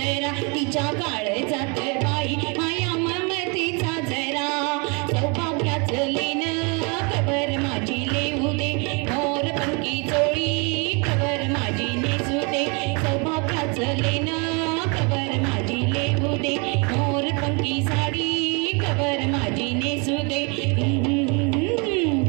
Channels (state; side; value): quieter; left; 32.3 dB